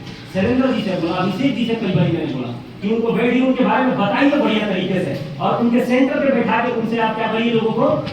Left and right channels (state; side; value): identical; both; correlation 1.00